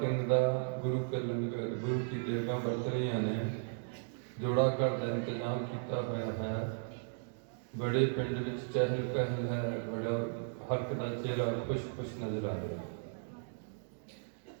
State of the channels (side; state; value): left; silent; digital silence